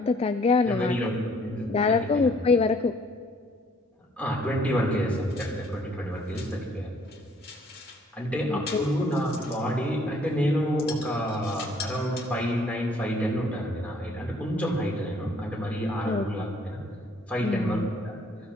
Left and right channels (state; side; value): normal; both; correlation 0.61